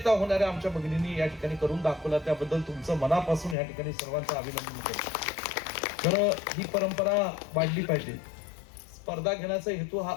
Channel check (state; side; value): drops out; right; at 3.6 s